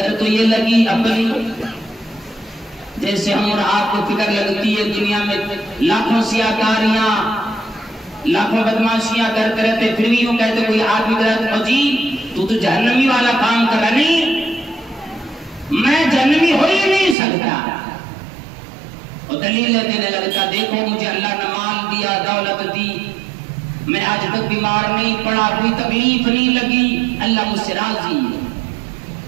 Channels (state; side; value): drops out; left; at 17.2 s